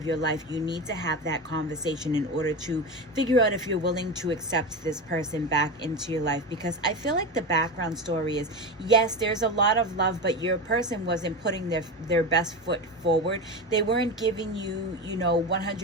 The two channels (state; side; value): normal; both; correlation 0.21